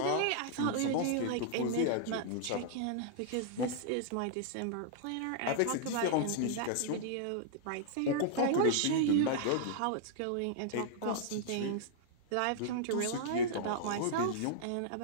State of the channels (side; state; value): both; different; correlation -0.01